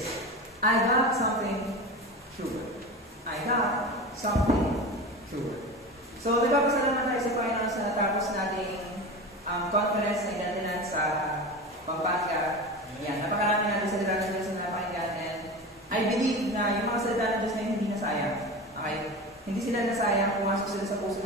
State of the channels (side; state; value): both; normal; correlation 0.28